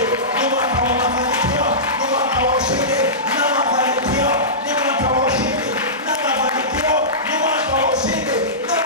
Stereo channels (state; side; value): normal; both; correlation -0.19